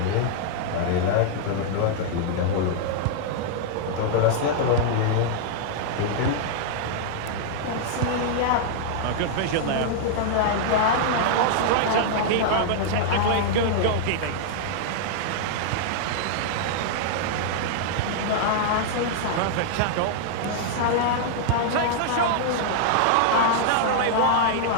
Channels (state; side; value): different; both; correlation -0.01